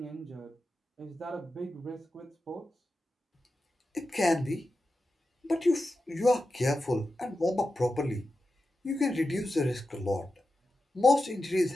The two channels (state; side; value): normal; both; correlation 0.91